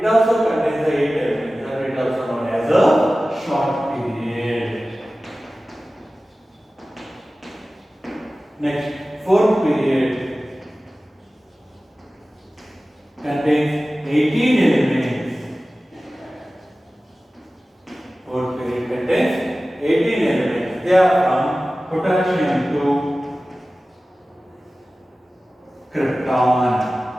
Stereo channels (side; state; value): both; normal; correlation 0.96